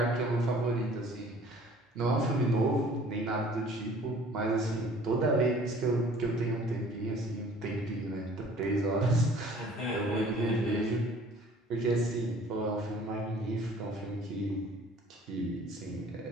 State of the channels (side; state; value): both; normal; correlation 0.52